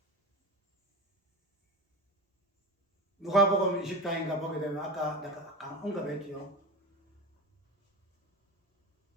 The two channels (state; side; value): normal; both; correlation 0.27